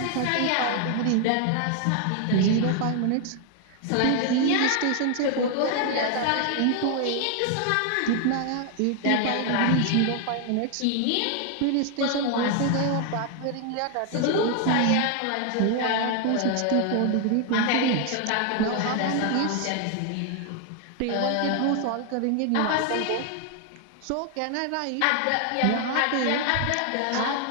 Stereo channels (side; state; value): both; different; correlation 0.00